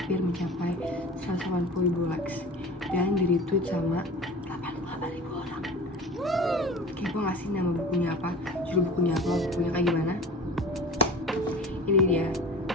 mencapai 180.000 likes dan di retweet sama 88.000 orang. Kepo gak sih nama bukunya apa? Judul bukunya apa? Bukunya kayak gimana? Ini dia,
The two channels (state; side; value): normal; both; correlation 0.38